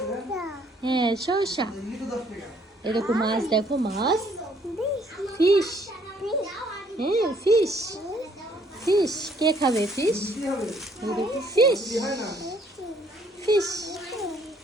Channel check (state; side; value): normal; both; correlation 0.64